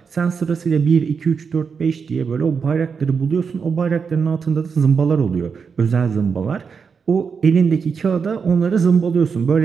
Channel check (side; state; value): left; quieter; 5.9 dB